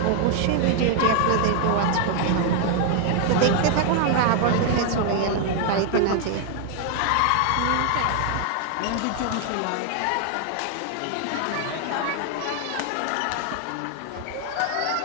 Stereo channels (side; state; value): both; different; correlation 0.00